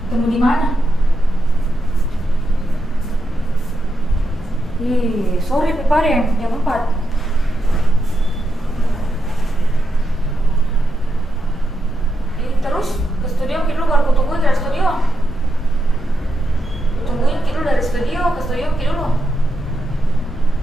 Ketemu di mana? Ih, sore Pepare, jam 4. Terus ke studio kita baru tungguin dari studio. Tungguin kita dari studio ke studio kita dulu.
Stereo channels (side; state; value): both; normal; correlation 0.85